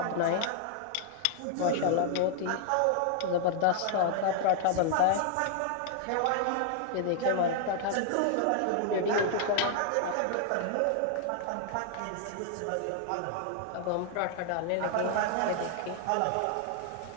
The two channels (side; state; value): both; different; correlation -0.01